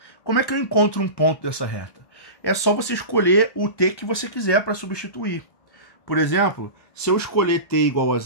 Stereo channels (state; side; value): late; right; 1.1 ms